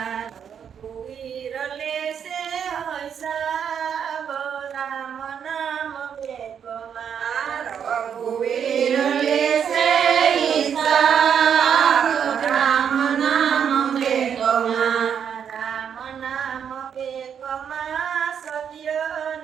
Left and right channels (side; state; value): left; quieter; 7.9 dB